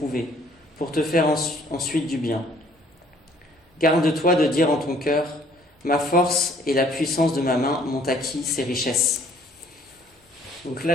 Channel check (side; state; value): both; normal; correlation 0.59